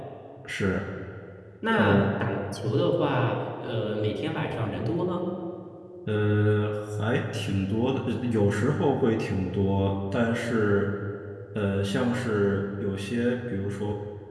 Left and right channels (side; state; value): both; identical; correlation 1.00